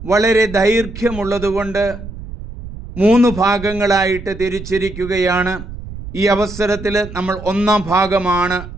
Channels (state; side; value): noise; right; rumble, 12 dB below the sound